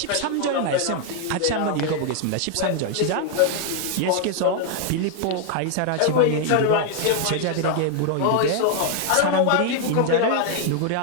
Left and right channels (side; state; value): both; different; correlation 0.00